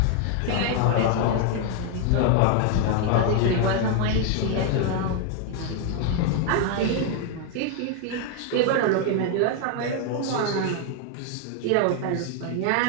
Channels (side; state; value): both; different; correlation 0.00